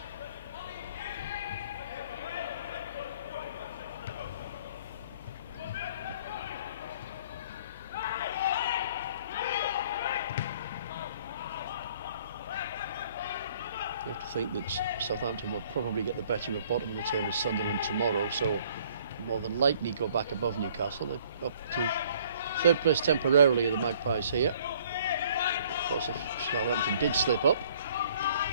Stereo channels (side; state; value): both; inverted; correlation -0.58